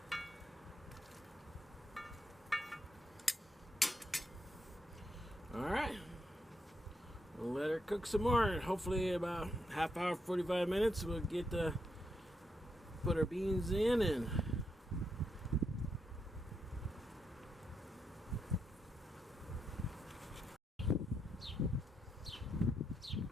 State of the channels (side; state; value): both; normal; correlation 0.81